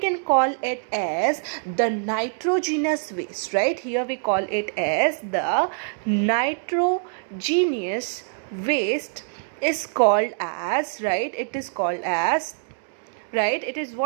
call it as the nitrogenous waste, right? Here we call it as the nitrogenous waste is called as, right? It is called as, right? It is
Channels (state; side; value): silent; left; 62 dB below the other